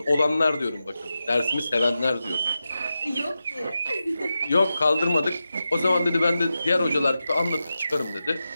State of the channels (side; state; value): both; inverted; correlation -0.91